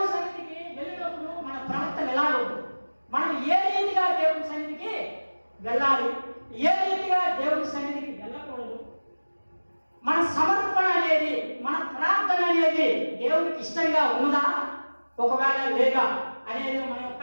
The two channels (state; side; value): inverted; both; correlation -1.00